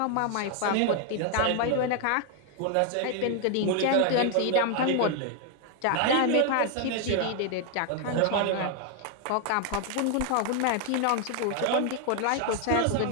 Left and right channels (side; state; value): both; different; correlation 0.01